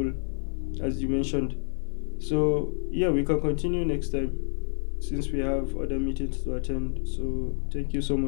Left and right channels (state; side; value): silent; right; 59 dB below the other